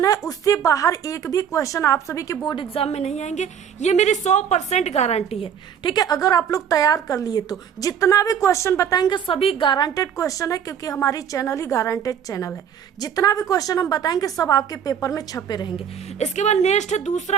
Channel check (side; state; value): left; quieter; 8.3 dB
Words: है उससे बाहर एक भी क्वेश्चन आप सभी के बोर्ड एग्जाम में नहीं आएंगे, ये मेरी 100% गारंटी है। ठीक है, अगर आप लोग तैयार कर लिए तो जितना भी क्वेश्चन बताएंगे सभी गारंटेड क्वेश्चन है, क्योंकि हमारी चैनल ही गारंटेड चैनल है। जितना भी क्वेश्चन हम बताएंगे सब आपके पेपर में छपे रहेंगे। इसके बाद नेक्स्ट है